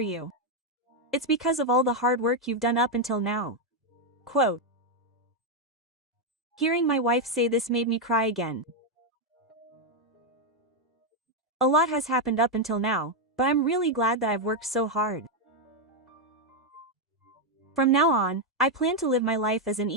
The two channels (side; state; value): both; normal; correlation 0.02